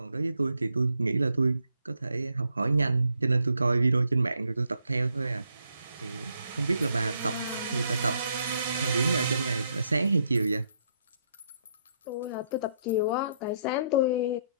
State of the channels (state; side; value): inverted; both; correlation -0.73